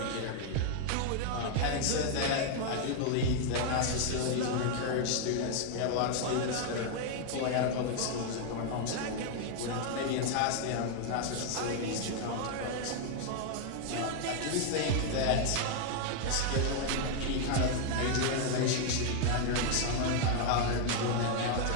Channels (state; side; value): different; both; correlation 0.00